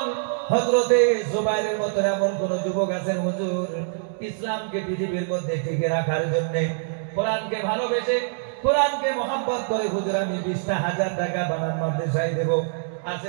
হযরতে জুবাইরের মতো এমন কোন যুবক আছেন হুজুর ইসলামকে পৃথিবীর মধ্যে টিকে রাখার জন্য, কোরআনকে ভালোবেসে, কোরআনকে মহব্বত করে হুজুর আমি 20,000 টাকা বানানোর মাদ্রাসায় দেব?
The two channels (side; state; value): left; silent; digital silence